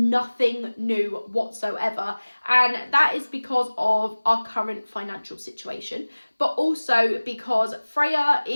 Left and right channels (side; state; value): both; inverted; correlation -1.00